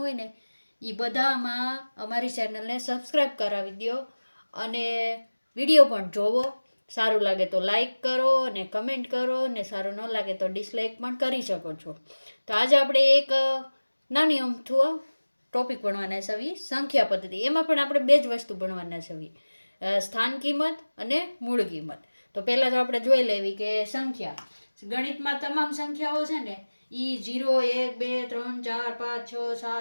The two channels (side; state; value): both; inverted; correlation -1.00